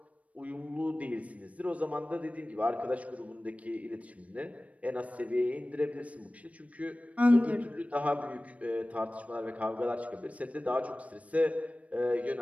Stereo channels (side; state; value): left; late; 0.066 ms